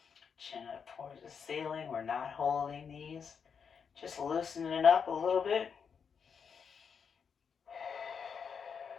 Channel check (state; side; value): quieter; right; 6.5 dB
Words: chin up towards the ceiling. We're not holding these, just loosening up a little bit.